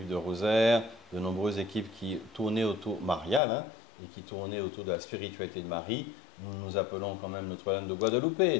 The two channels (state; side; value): drops out; right; at 3.4 s